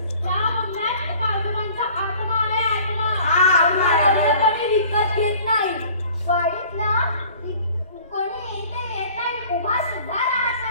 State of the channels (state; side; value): inverted; both; correlation -0.49